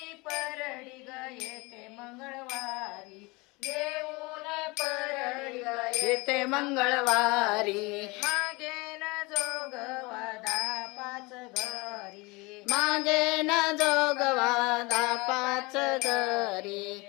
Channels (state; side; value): quieter; right; 25.3 dB